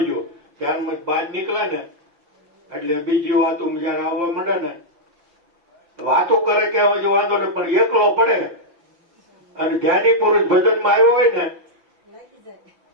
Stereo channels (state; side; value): late; left; 5.9 ms